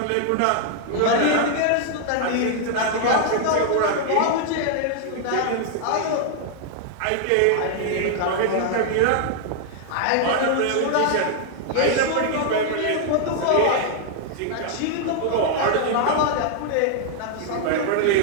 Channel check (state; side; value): different; both; correlation 0.00